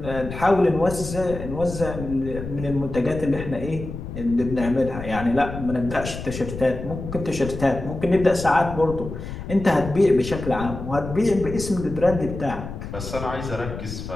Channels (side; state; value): left; noise; rumble, 9 dB below the sound